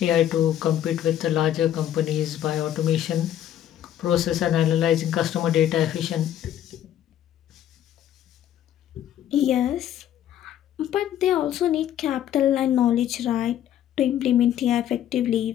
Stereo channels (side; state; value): right; quieter; 11.1 dB